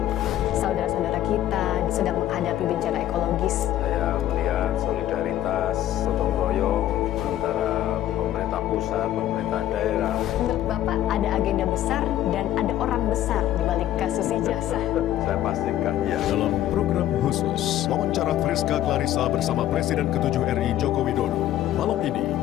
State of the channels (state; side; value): quieter; right; 12.7 dB